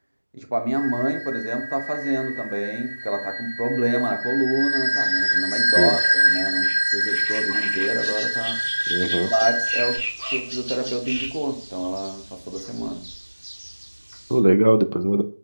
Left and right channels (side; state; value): both; inverted; correlation -1.00